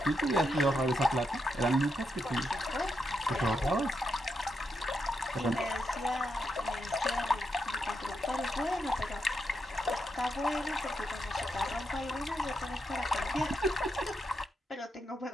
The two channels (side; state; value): both; normal; correlation 0.83